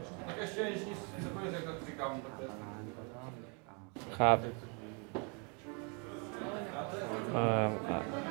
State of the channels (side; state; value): left; quieter; 35.2 dB